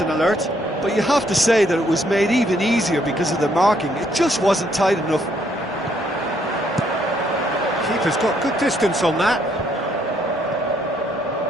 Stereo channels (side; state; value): both; normal; correlation 0.70